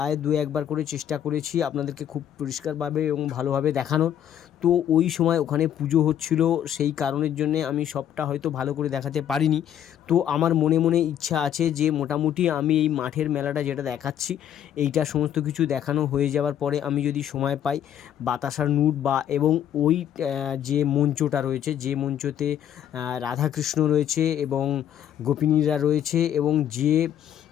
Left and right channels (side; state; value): right; quieter; 10.2 dB